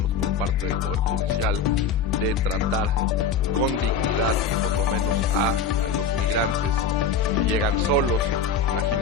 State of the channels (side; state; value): right; quieter; 5.6 dB